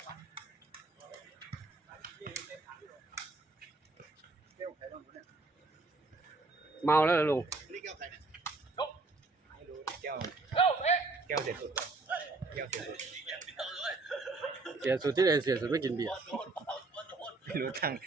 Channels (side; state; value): left; quieter; 3.5 dB